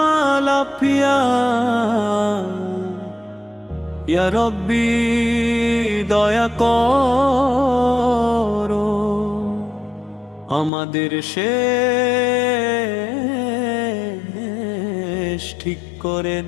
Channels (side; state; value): right; drops out; at 10.7 s